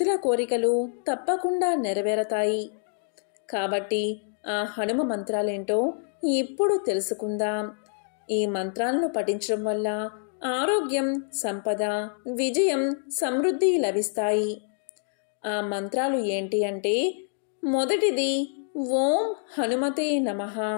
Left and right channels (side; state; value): right; silent; digital silence